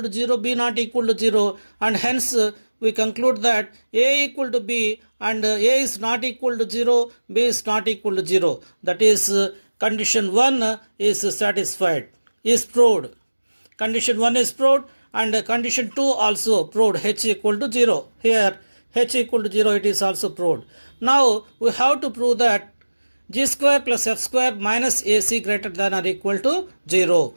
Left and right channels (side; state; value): both; inverted; correlation -1.00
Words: to 0, b not equal to 0, and hence we conclude that a equal to b and a is not equal to 0, b is not equal to 0. That is, condition 1 is satisfied, is proved. Condition 1 is proved and condition 2 also proved, h equal to 0. Here h equal to 0, it is also proved. Now we have to prove that g square plus f square minus ac greater than or equal to 0.